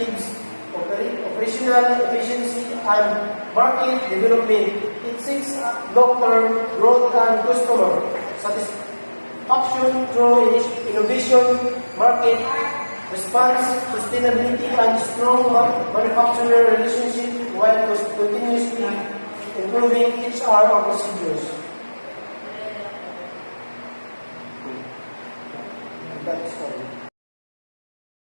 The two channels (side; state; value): both; inverted; correlation -1.00